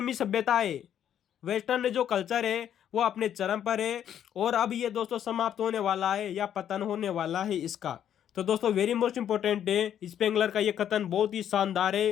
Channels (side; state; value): right; quieter; 9.8 dB